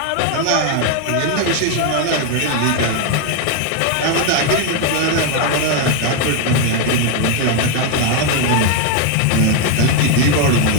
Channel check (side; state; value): both; different; correlation 0.01